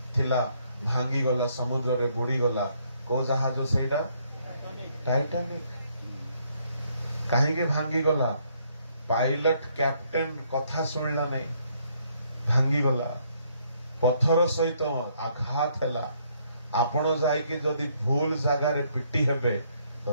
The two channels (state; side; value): inverted; both; correlation -0.69